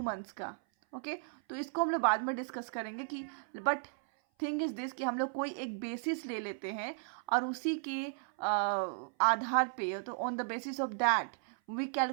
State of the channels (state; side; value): silent; left; 54 dB below the other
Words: मंथ्स का. ओके, तो इसको हम लोग बाद में डिस्कस करेंगे कि बट थिंग इज दिस कि हम लोग कोई एक बेसिस ले लेते हैं और उसी के आधार पे, तो on the basis of that we